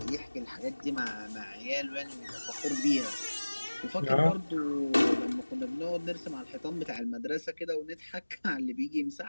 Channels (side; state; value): both; inverted; correlation -1.00